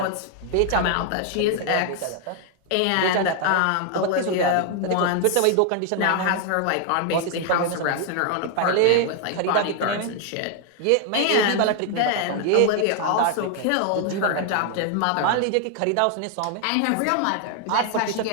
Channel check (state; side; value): different; both; correlation 0.00